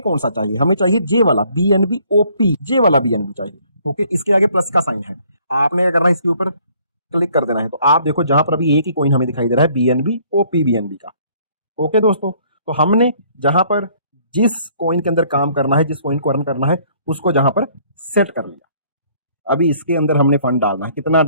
कौन सा चाहिए, हमें चाहिए जे वाला बीएनबी ओपी, जे वाला बीएनबी चाहिए। ओके, इसके आगे प्लस का साइन है, आपने क्या करना है, इसके ऊपर क्लिक कर देना है। तो आप देखो जहां पर अभी एक ही कॉइन हमें दिखाई दे रहा है, बीएनबी ओपी बीएनबी का। ओके दोस्तों, तो हमने जहां पर जिस कॉइन के अंदर काम करना है, जिस कॉइन को अर्न करना है, उसको जहां पर सेट कर लिया। अभी इसके अंदर हमने फंड डालना है, कितना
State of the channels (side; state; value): both; inverted; correlation -0.61